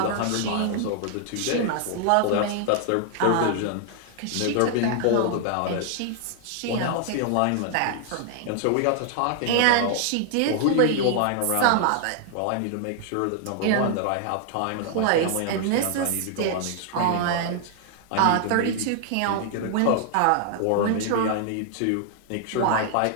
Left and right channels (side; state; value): both; different; correlation 0.00